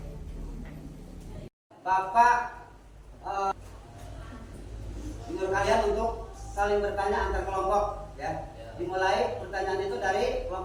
Bapak menyuruh kalian untuk saling bertanya antar kelompok ya. Dimulai pertanyaan itu dari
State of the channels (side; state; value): both; identical; correlation 1.00